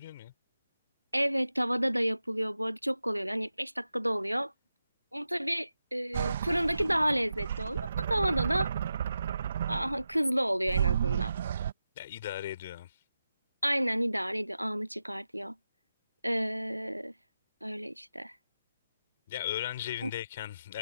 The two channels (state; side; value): inverted; both; correlation -0.90